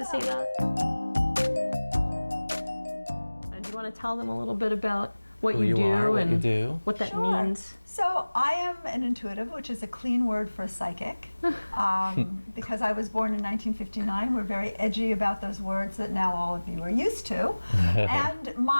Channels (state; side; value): inverted; both; correlation -1.00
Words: say that? And do you want to tell them a little bit about what Who you do are, what and you do. what that Sure. means? So I am an intuitive, which is a clean word for a psychic. Because I was born in 1959, we're very edgy about those words that now all of you are used to. And